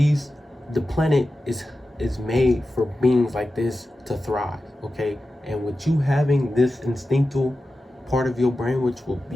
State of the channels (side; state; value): both; normal; correlation 0.93